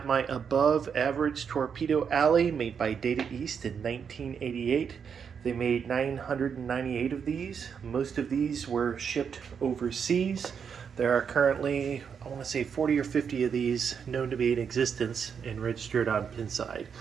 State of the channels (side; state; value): left; quieter; 6.9 dB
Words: my above average Torpedo Alley made by Data East in 1988. They made 998 of these. Most of these were shipped overseas. There are currently, I want to say 40 or 50 of these known to be in existence and registered on Pinside.